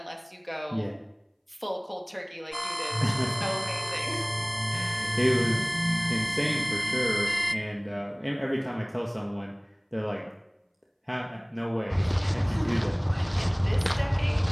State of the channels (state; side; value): identical; both; correlation 1.00